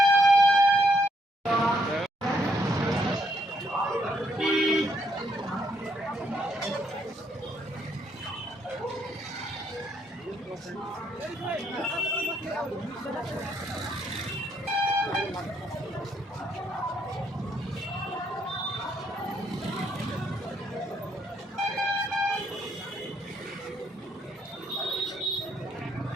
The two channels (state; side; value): normal; both; correlation 0.72